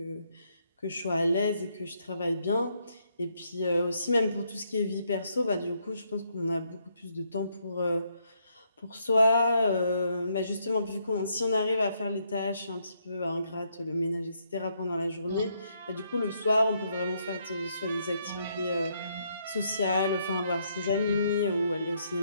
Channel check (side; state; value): both; inverted; correlation -0.74